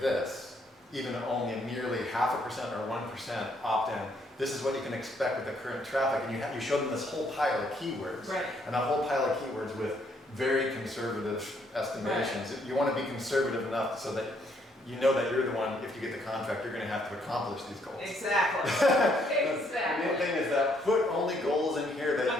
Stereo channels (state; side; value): normal; both; correlation 0.70